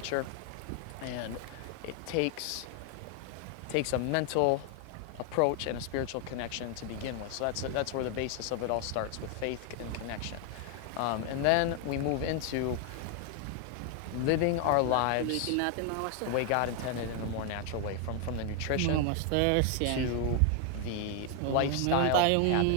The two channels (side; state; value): both; different; correlation 0.01